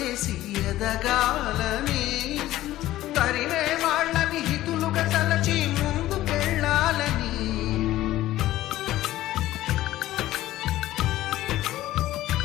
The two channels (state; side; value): quieter; right; 15.1 dB